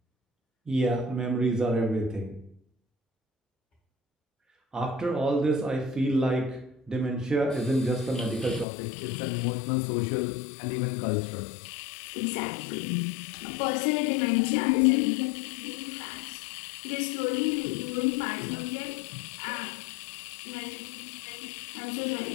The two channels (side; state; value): right; drops out; at 8.7 s